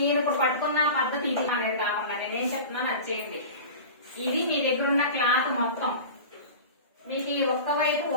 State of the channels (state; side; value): inverted; both; correlation -0.34